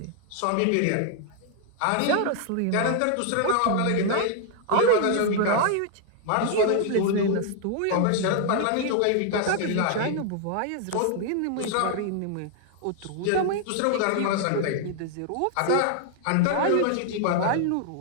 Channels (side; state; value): both; different; correlation 0.00